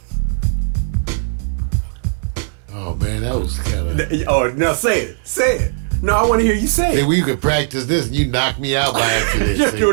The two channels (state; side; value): silent; left; digital silence